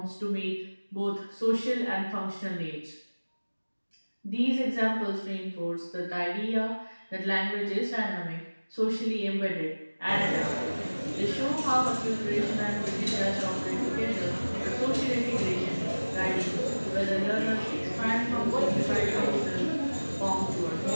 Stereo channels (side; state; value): both; inverted; correlation -1.00